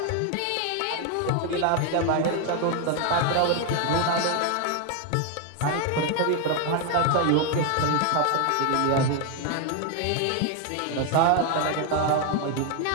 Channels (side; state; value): both; different; correlation 0.01